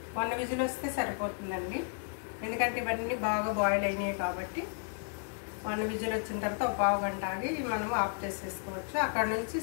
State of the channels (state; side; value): silent; right; 56 dB below the other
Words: వన్ విజిల్ వస్తే సరిపోతుందండి, ఎందుకంటే ఇవన్నీ బాగా బాయిల్ అయినాయి కాబట్టి. వన్ విజిల్ వచ్చిన తర్వాత ఒక పావు గంట ఆగి మనం ఆఫ్ చేసేసుకోవచ్చు. అక్కడ నుంచి